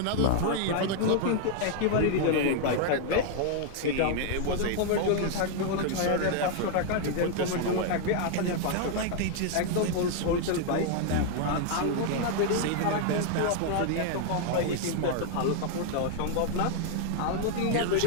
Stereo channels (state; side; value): different; both; correlation 0.00